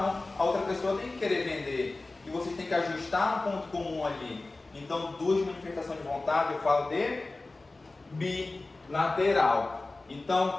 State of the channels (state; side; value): quieter; right; 3.2 dB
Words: a outra pessoa tem que querer vender. E você tem que ajustar um ponto comum ali. Então, duas manifestações de vontade, eu falo de bilateral.